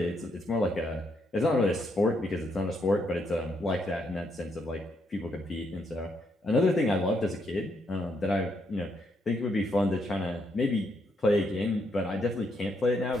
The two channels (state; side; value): normal; both; correlation 0.76